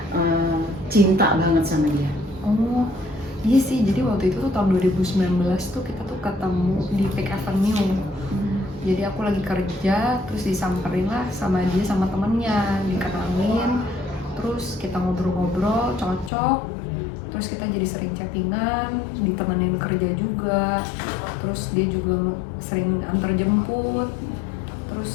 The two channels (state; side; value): drops out; right; at 16.3 s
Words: cinta banget sama dia? Oh iya sih, jadi waktu itu tuh tahun 2019 tuh kita tuh ketemu di Peak Avenue. Jadi aku lagi kerja, terus disamperin lah sama dia sama temennya, dikenalin, terus kita ngobrol-ngobrol, cocok, terus kita jadi sering chattingan, ditemenin kerja juga, terus dia juga sering antar jemput,